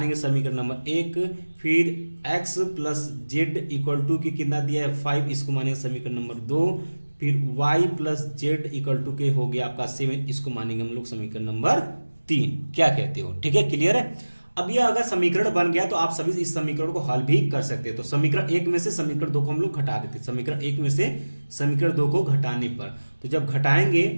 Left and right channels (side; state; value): both; inverted; correlation -1.00